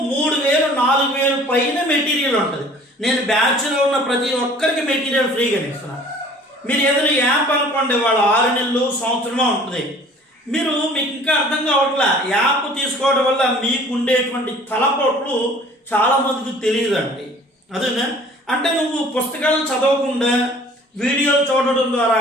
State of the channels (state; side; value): normal; both; correlation 0.50